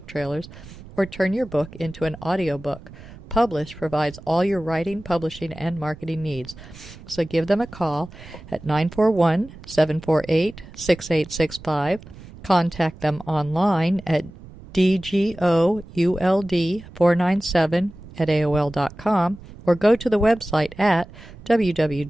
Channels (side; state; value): right; noise; rumble, 18 dB below the sound